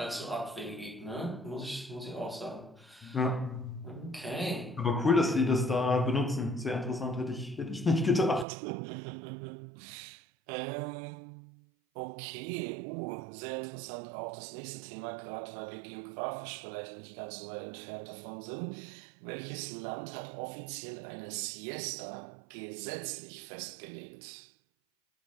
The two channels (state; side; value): drops out; left; at 8.5 s